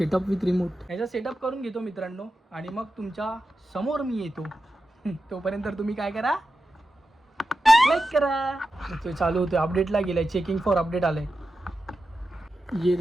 विथ रिमोट, ह्याचा सेटअप करून घेतो मित्रांनो, आणि मग तुमच्या समोर मी येतो. तोपर्यंत तुम्ही काय करा, लाईक करा. तो चालू होतो, अपडेटला गेलाय, चेकिंग फॉर अपडेट आलंय. ये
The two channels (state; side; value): normal; both; correlation 0.91